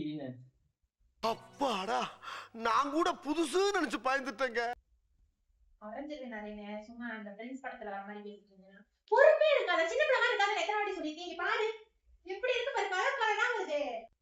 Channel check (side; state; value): both; identical; correlation 1.00